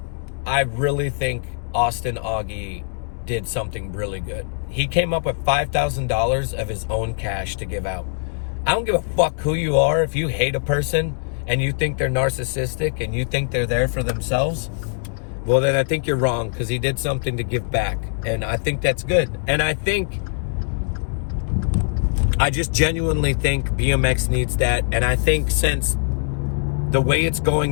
I really think Austin Augie did something really good. He came up with $5,000 of his own cash to give out. I don't give a fuck who you are. If you hate a person and you think they're narcissistic and you think they're there for themselves, well, then I think you're wrong, because he did something to give back. And I think that's good. And I just genuinely think BMX needs that. And I think since the way it's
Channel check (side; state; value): right; silent; 64 dB below the other